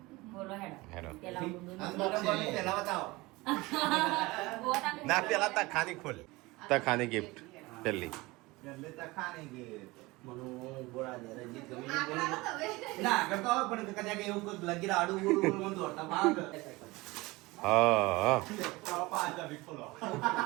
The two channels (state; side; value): quieter; left; 22.0 dB